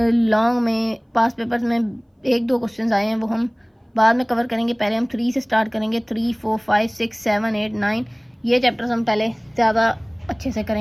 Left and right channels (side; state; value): both; identical; correlation 1.00